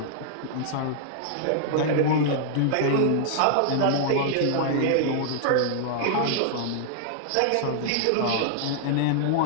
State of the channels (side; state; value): both; different; correlation -0.01